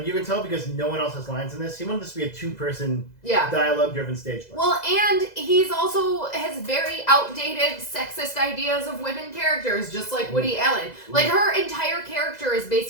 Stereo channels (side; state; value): right; late; 2.0 ms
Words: you can tell because no one else has lines in this. He wanted this to be a 2-person dialogue-driven stage play. Well, and he's also has very outdated sexist ideas of women characters, just like Woody Allen. Like, her entire character is